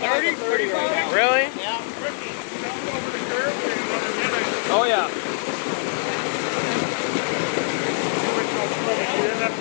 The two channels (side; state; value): right; silent; 63 dB below the other